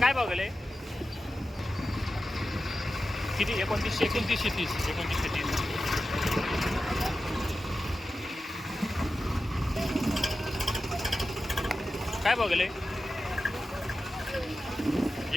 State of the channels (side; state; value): both; normal; correlation 0.93